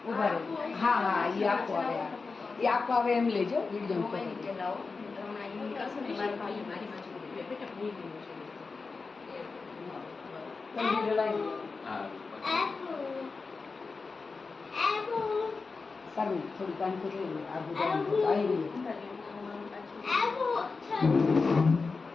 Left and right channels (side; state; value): right; quieter; 4.3 dB